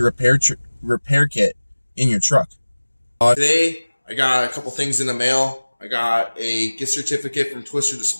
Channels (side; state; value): both; inverted; correlation -1.00